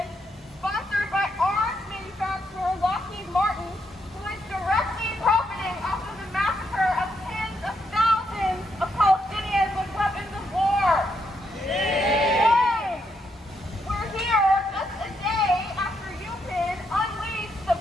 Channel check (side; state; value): both; normal; correlation 0.78